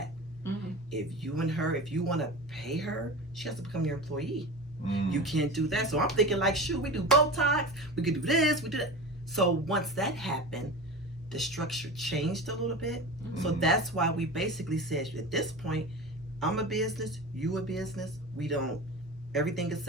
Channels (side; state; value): both; normal; correlation 0.30